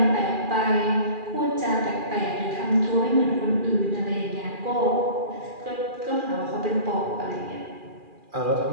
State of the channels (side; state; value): left; late; 2.4 ms